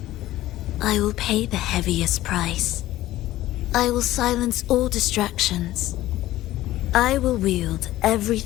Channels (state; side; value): quieter; right; 15.4 dB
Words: I will pay the heaviest price. I will silence all distractions. I will wield